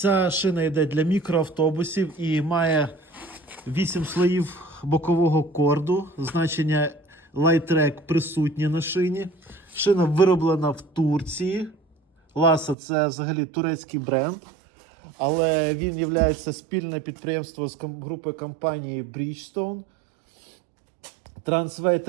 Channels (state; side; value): drops out; left; at 12.8 s